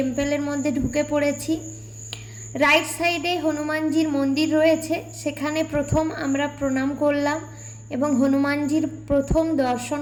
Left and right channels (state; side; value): identical; both; correlation 1.00